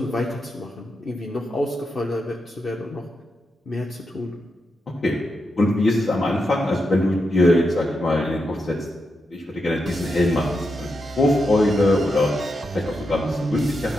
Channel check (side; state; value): both; normal; correlation 0.86